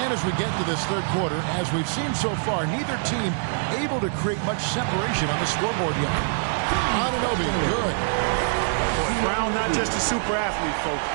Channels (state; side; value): silent; left; digital silence